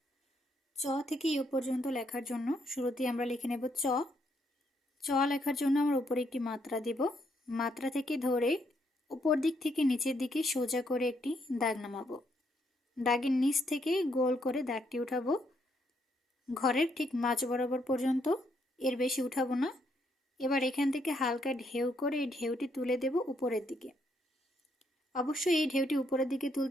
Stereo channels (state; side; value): normal; both; correlation 0.74